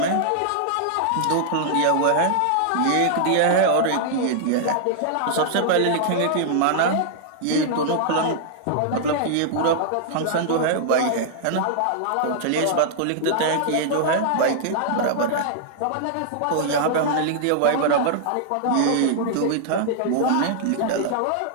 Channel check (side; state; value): both; different; correlation -0.01